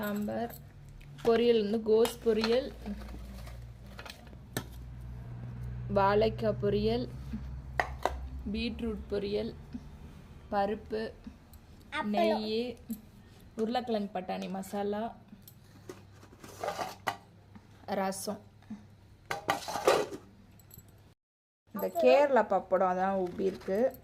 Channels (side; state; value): both; identical; correlation 1.00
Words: பொரியல் வந்து கோஸ் பொரியல், வாழைக்காய் பொரியல், பீட்ரூட் பொரியல், பருப்பு, நெய், உருளைக்கிழங்கு பட்டாணி மசாலா, ரசம். இந்த கேரளா பப்படம் அதான் உப்பி இருக்கு.